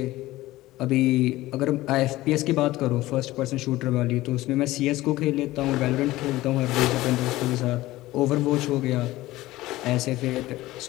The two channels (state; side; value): quieter; right; 17.4 dB